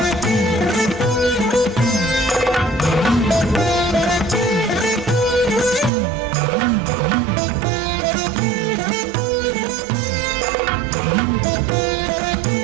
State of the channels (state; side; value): drops out; left; at 5.9 s